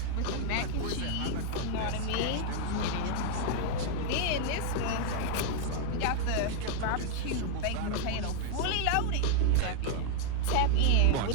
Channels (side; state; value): both; different; correlation 0.00